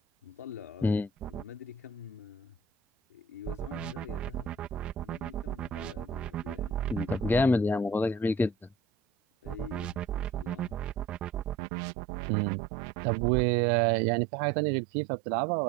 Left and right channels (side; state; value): left; drops out; at 11.6 s